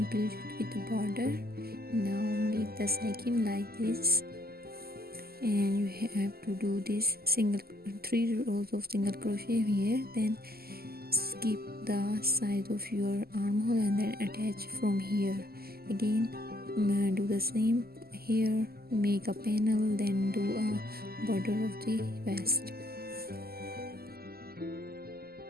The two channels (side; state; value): left; late; 0.45 ms